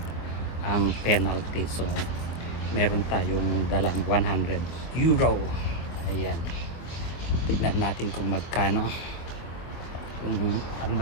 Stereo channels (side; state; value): right; late; 24 ms